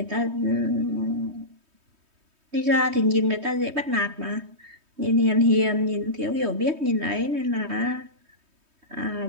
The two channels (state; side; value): late; left; 3.2 ms